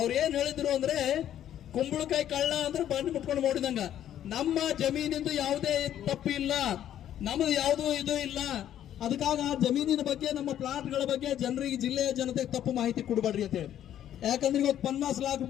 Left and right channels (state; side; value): quieter; right; 11.0 dB